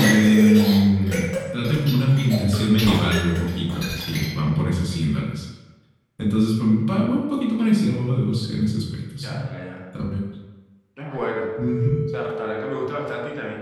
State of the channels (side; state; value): both; identical; correlation 1.00